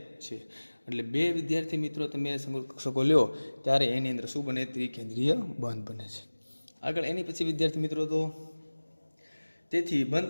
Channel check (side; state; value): both; inverted; correlation -1.00